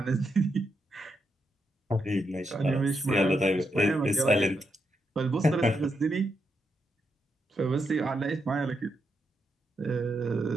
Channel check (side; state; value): both; normal; correlation 0.81